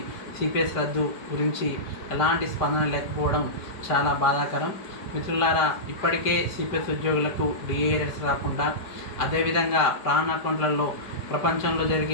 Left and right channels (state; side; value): late; right; 4.8 ms